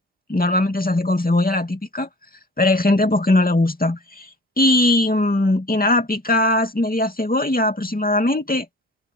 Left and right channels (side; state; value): both; normal; correlation 0.46